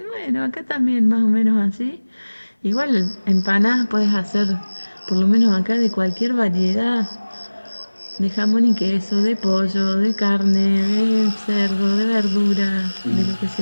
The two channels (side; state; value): both; inverted; correlation -1.00